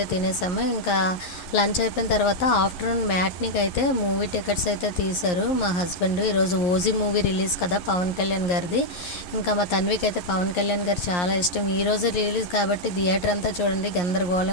తినేసాము. ఇంకా లంచ్ అయిపోయిన తర్వాత ఆఫ్టర్‌నూన్ మ్యాట్నీకైతే మూవీ టికెట్స్ అయితే తీశారు మా హస్బెండ్. ఈరోజు 'ఓజీ' మూవీ రిలీజ్ కదా పవన్ కళ్యాణ్ గారిది. ఇంకా మా తన్వికైతే పవన్ కళ్యాణ్ గారు చాలా ఇష్టం. ఈరోజు రిలీజ్ కాబట్టి థియేటర్ అంతా చూడండి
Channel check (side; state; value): right; late; 11 ms